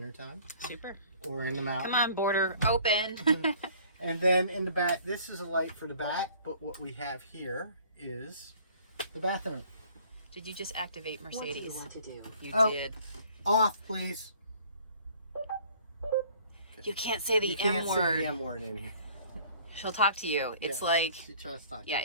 Super. Or in the mountains. Come on, border open. And then in the back, this is a light for the back, but what we have here is the bathroom. Did you just activate Mercedes? What do you want to do? You did. Off, please. You can't say the You can't M word. say the M word in here. She'll talk to you. It's like, She tries to talk. yeah,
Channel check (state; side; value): inverted; both; correlation -0.54